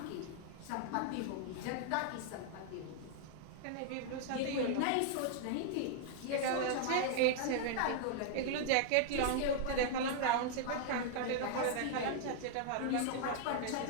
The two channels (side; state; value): both; different; correlation -0.01